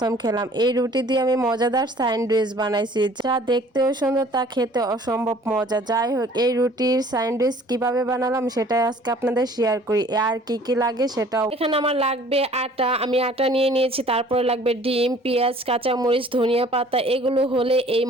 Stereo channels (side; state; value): both; normal; correlation 0.52